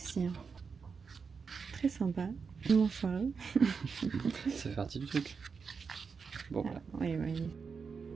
Hein. Très sympa. Mon foireux. Ça fait partie du truc. Bon, voilà. Oui, oui.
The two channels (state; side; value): quieter; left; 5.5 dB